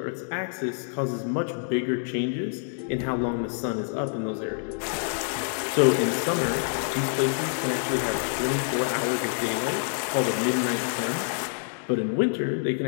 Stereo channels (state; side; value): silent; right; digital silence